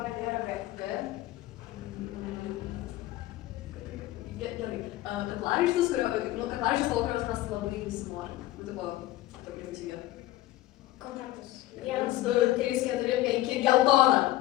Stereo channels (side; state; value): right; quieter; 16.2 dB